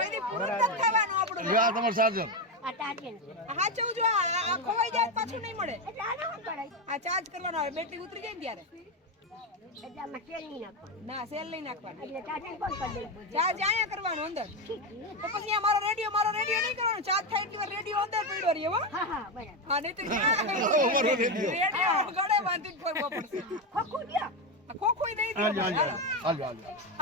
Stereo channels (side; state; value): both; normal; correlation 0.11